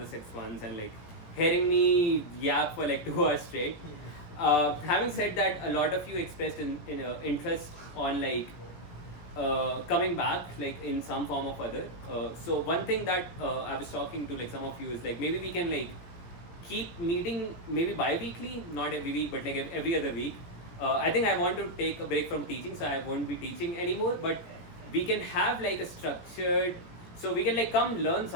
6 ones and like hearing me yap for like 2 hours straight. Having said that, a lot of you expressed interest on like coming back like in some form or other. So one thing that I was talking to like some of you is like maybe we can like keep meeting maybe bi-weekly, not every week, but like every other week. I think I want to take a break from teaching, so I won't be teaching anymore, but we can have like a structured, so we can like come learn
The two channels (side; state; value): right; late; 17 ms